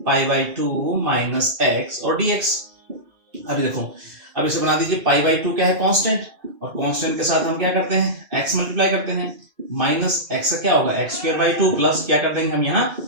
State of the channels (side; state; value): left; late; 2.5 ms